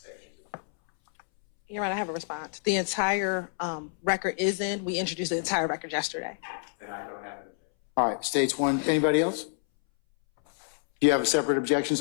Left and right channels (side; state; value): right; silent; 59 dB below the other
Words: You're right. I have a response. The entire record is in. We introduced the entire record yesterday. Then I don't have an objection. All right, State's 1. Anybody else? Do you have a separate objection,